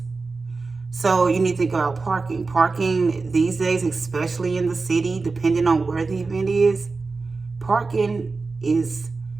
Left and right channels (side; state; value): left; quieter; 4.0 dB